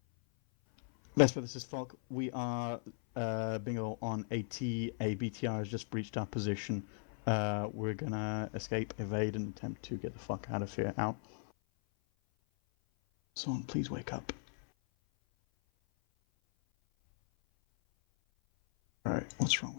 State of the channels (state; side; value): silent; right; 53 dB below the other